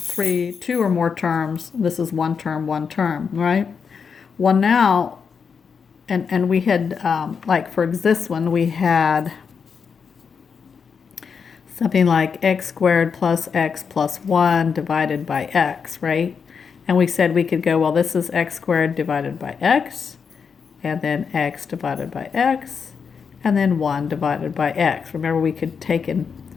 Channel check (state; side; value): quieter; right; 6.1 dB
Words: two or more terms. This is one term, right? Well, now, and we had, like for this one, we had something like x squared plus x plus 1 divided by x, right? And we said we could go, well, this is x squared divided by x, and then x divided by x, and then 1 divided by x. Remember, we could take and